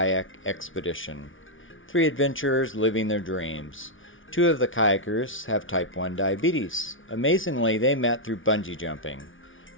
expedition. 3 adventurers living their dreams. 2 of the kayakers have type 1 diabetes. Amazingly, they met through bungee jumping,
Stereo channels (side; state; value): right; late; 0.57 ms